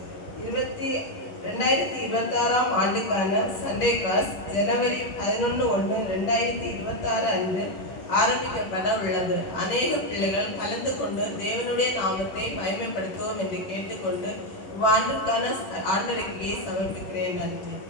2026ஆம் ஆண்டுக்கான சண்டே கிளாஸ் ஜனவரி 11/1/2026 அன்று ஆரம்பிக்கப்பட உள்ளது. அநேக பிள்ளைகள் கலந்து கொண்டு தேவனுடைய நாமத்தை மகிமைப்படுத்துவோம் என்று கேட்டுக்கொண்டு இவ்வாண்டிற்கான ஆண்டறிக்கையை சமர்ப்பிக்கிறேன். நன்றி.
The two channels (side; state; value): right; late; 10 ms